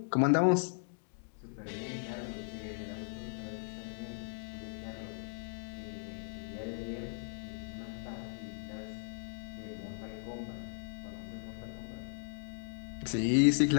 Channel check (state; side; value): silent; right; digital silence